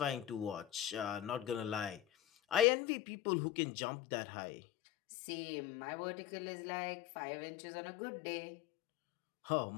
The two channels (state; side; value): drops out; right; at 2.7 s